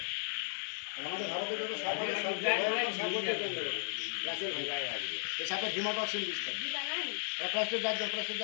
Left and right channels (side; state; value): right; silent; digital silence